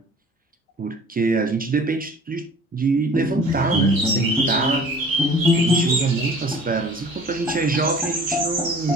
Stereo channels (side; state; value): both; normal; correlation 0.47